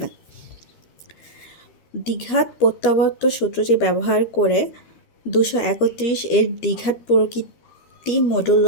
দ্বিঘাত প্রত্যাবর্ত সূত্রটি ব্যবহার করে 231 এর দ্বিঘাত প্রকৃতি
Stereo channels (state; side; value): late; right; 13 ms